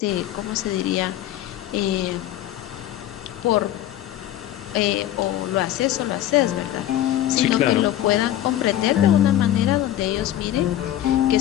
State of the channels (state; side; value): quieter; right; 12.8 dB